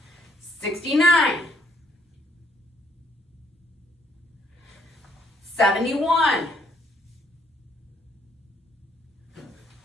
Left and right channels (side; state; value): both; normal; correlation 0.67